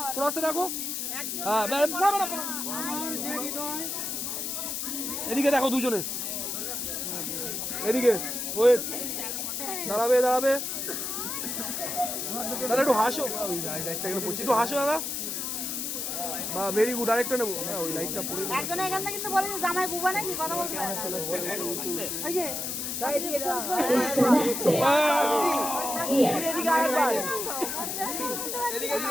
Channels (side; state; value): left; noise; hiss, 3 dB below the sound